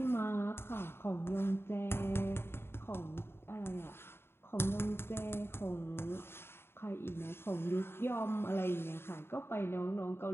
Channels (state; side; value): late; right; 0.11 ms